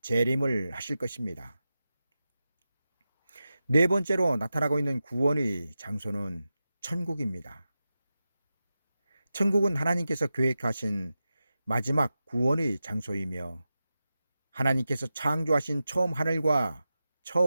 재림을 하실 것입니다. 네 번째로 나타나고 있는 구원의 장소는 천국입니다. 천국은 하나님께서 계획하신 마지막 구원의 장소이며 하나님께서 창조하신 처음 하늘과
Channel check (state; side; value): inverted; both; correlation -0.92